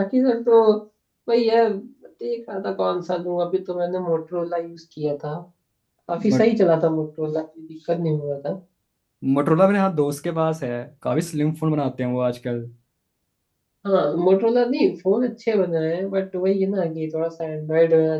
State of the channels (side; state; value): both; identical; correlation 1.00